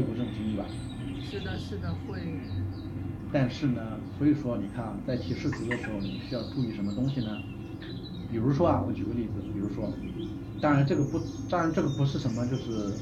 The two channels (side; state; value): both; identical; correlation 1.00